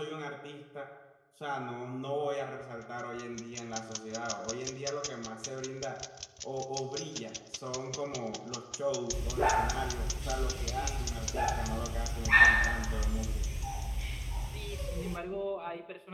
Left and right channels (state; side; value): identical; both; correlation 1.00